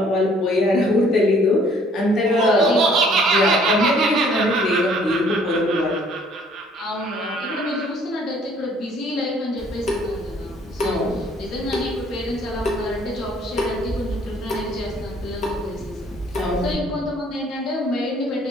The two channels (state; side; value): normal; both; correlation 0.59